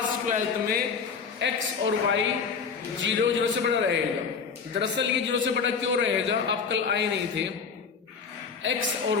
12th में x और y 0, 0 से बड़ा रहेगा। दरअसल ये 0 से बड़ा क्यों रहेगा, आप कल आए नहीं थे। x और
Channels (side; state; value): right; quieter; 5.7 dB